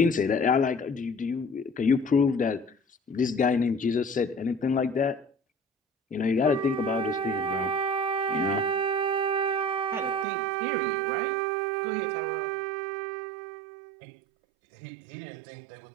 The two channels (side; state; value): left; drops out; at 10.2 s